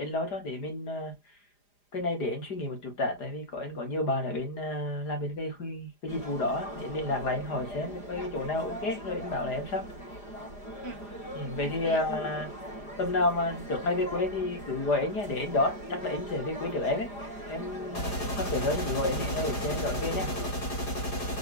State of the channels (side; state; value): right; late; 4.9 ms